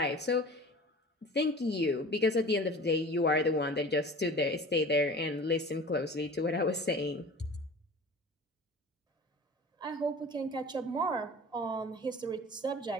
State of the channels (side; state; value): both; normal; correlation 0.40